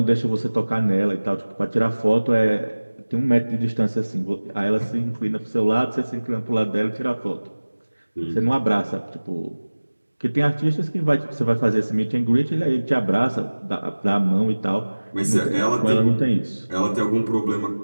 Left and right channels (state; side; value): inverted; both; correlation -1.00